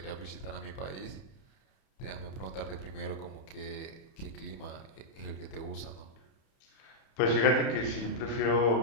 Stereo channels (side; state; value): right; late; 31 ms